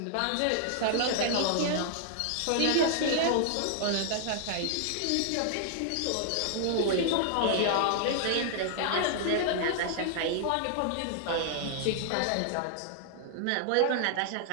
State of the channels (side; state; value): both; different; correlation -0.01